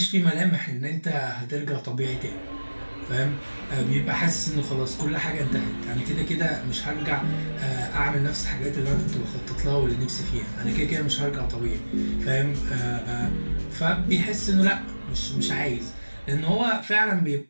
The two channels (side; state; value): both; inverted; correlation -1.00